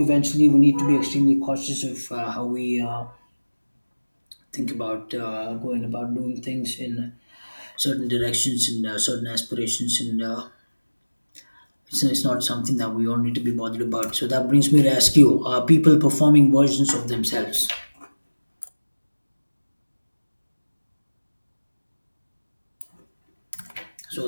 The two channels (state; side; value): inverted; both; correlation -1.00